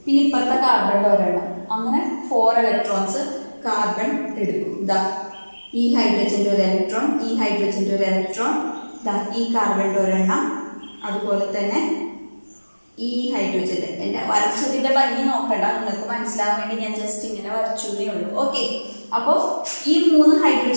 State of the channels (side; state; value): both; inverted; correlation -1.00